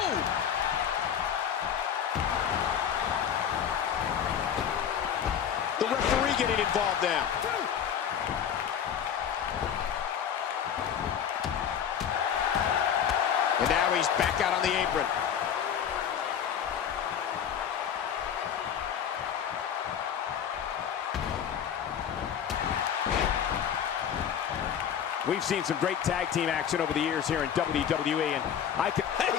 The referee getting involved now. And now he's back out on the apron. We've seen some great tag team action over the years here in WWE, and I can... Hey,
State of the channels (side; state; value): right; quieter; 8.6 dB